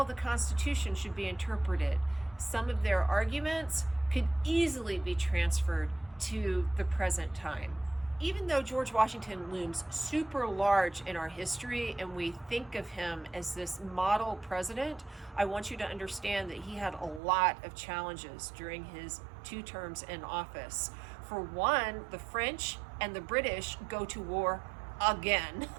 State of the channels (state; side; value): drops out; left; at 17.2 s